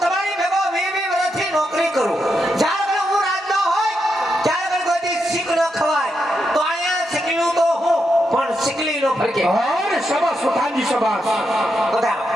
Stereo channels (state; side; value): normal; both; correlation 0.83